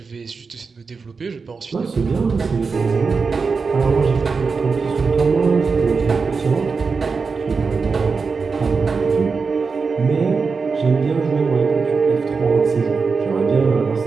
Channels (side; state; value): left; quieter; 4.8 dB